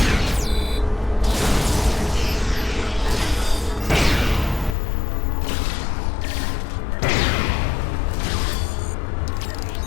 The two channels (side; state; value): right; drops out; at 4.8 s